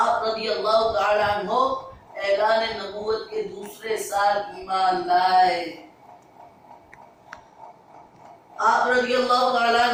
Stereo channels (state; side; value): identical; both; correlation 1.00